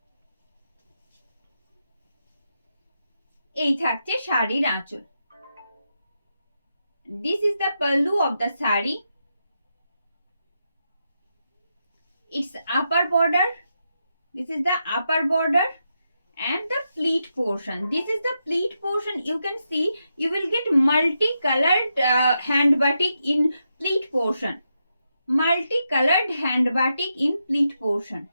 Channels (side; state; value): both; inverted; correlation -0.85